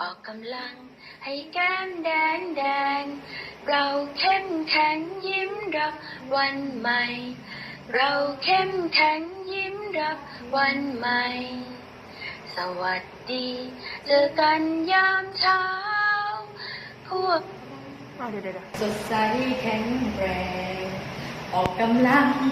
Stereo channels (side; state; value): both; identical; correlation 1.00